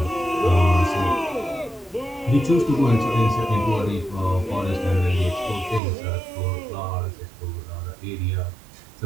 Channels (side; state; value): left; drops out; at 5.8 s